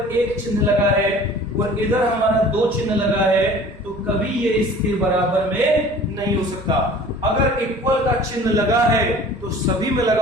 एक चिन्ह लगा है और इधर हमारा दो चिन्ह लगा है तो कभी ये इसके बराबर में नहीं हो सकता। अगर इक्वल का चिन्ह लगा है तो सभी में लगा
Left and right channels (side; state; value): both; normal; correlation 0.46